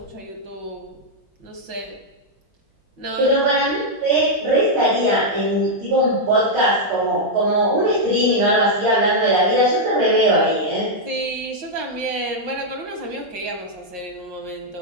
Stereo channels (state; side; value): normal; both; correlation -0.03